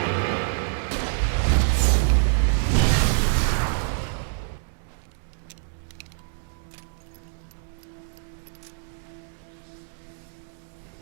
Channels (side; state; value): left; silent; digital silence